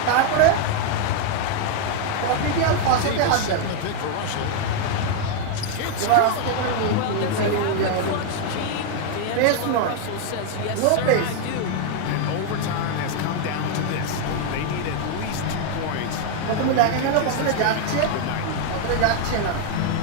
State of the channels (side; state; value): both; different; correlation 0.00